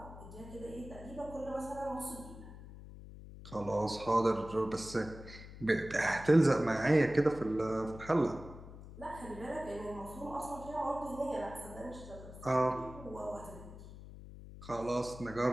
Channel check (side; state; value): left; noise; hum, 14 dB below the sound